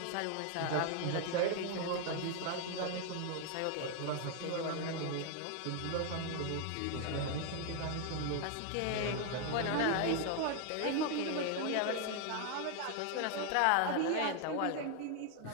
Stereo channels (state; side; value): different; both; correlation 0.00